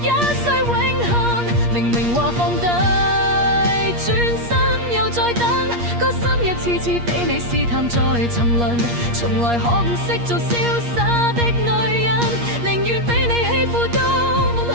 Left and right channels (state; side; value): late; left; 8.5 ms